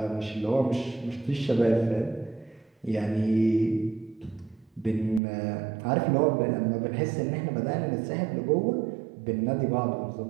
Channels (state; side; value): drops out; left; at 5.2 s